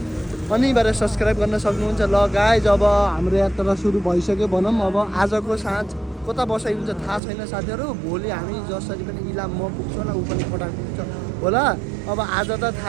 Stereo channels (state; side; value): drops out; left; at 7.2 s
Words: अनिवार्य सब्सक्राइब गर्न सक्नुहुन्छ। ल गाइज, अब हाम्रो यात्रा सुरु भइसक्यो भनौँ। अब आजको साँझ कता बसाइ हुन्छ थाहा छैन साथीहरू। भोलि हामी जसरी पनि इलाम म पुग्छु होला, ऊ पनि खोटाङ पुग्छ होला। अब आज त